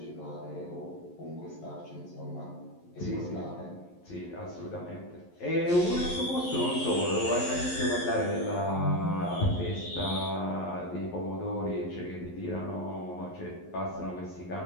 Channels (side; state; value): right; late; 11 ms